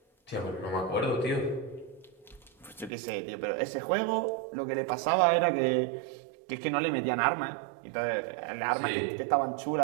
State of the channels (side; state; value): left; drops out; at 2.9 s